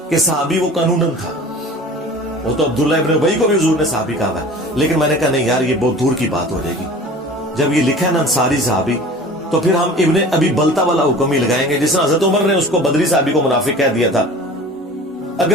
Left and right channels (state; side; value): normal; both; correlation 0.41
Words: کہ صحابی وہ قانوناً تھا، وہ تو عبداللہ ابن ابی کو بھی حضور نے صحابی کہا ہے، لیکن میں نے کہا نہیں یار یہ بہت دور کی بات ہو جائے گی۔ جب یہ لکھا ہے نا انصاری صحابی تو پھر ہم ابن ابی بلتا والا حکم ہی لگائیں گے، جس طرح حضرت عمر نے اس کو بدری صحابی کو منافق کہہ دیا تھا۔